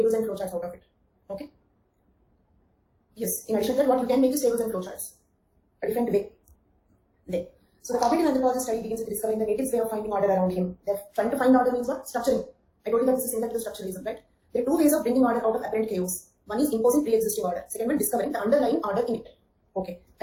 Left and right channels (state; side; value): identical; both; correlation 1.00